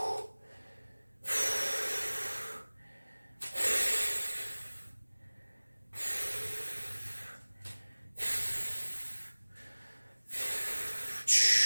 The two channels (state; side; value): inverted; both; correlation -1.00